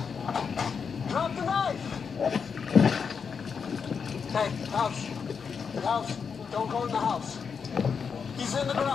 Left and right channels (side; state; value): right; quieter; 6.1 dB